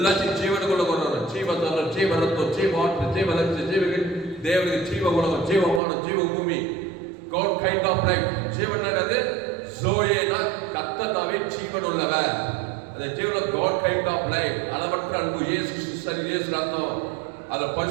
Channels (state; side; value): drops out; left; at 5.8 s